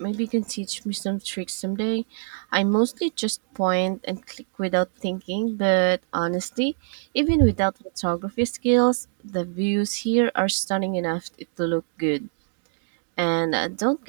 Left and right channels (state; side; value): silent; left; digital silence